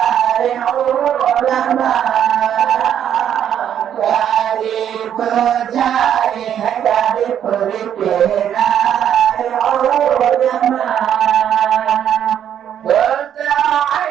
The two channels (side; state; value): left; quieter; 9.6 dB